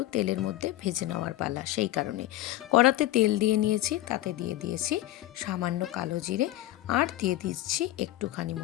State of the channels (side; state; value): right; quieter; 15.3 dB